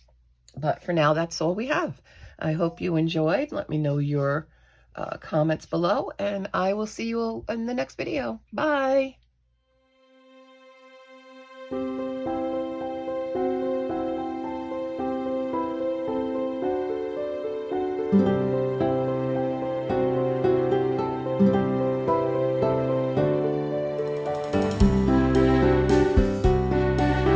for now, that's all we have. I hope you enjoyed. Let me know your comments below, and I will see you all in the next video. Bye.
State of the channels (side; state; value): both; identical; correlation 1.00